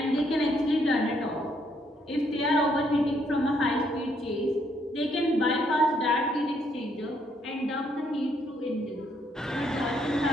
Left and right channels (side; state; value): both; normal; correlation 0.71